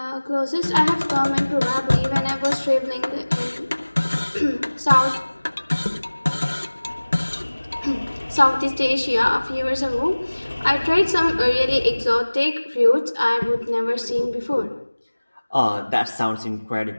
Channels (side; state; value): both; inverted; correlation -1.00